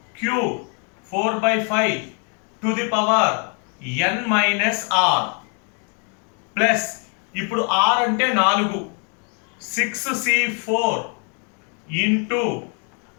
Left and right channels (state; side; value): quieter; right; 39.8 dB